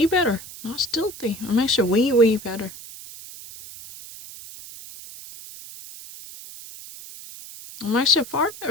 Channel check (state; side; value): noise; right; hiss, 15 dB below the sound